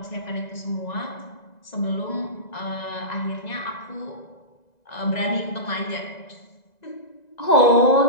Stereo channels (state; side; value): late; right; 2.0 ms